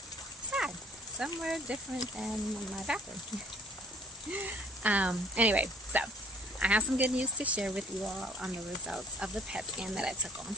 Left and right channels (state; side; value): normal; both; correlation 0.55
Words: somewhere different than my bathroom. Anyway, so I have some good news to share with you all on the results of the PET scan that I took on